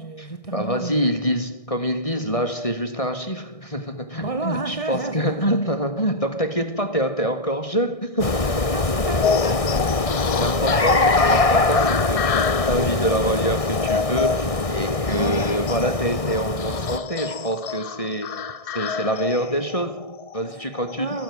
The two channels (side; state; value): right; late; 1.6 ms